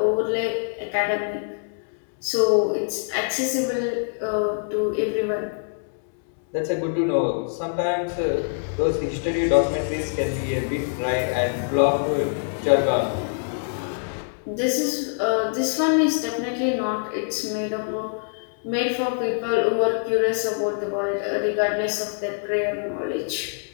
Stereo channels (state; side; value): silent; right; 62 dB below the other